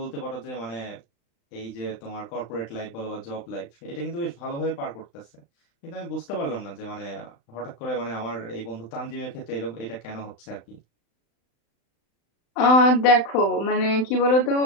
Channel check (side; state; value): right; late; 35 ms